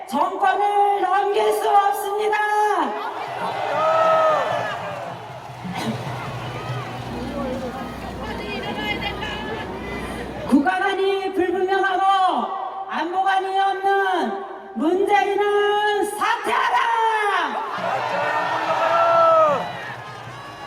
정권을 넘길 수 없습니다. 국가관이 불분명하고 안보관이 없는 문재인은 사퇴하라!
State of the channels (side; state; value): both; identical; correlation 1.00